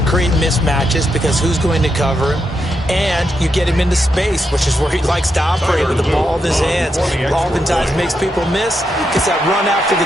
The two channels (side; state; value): both; normal; correlation 0.83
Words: create mismatches because who's going to cover him? And you get him into space, which is where he likes to operate with the ball in his hands. Oftentimes makes people miss, gets that run after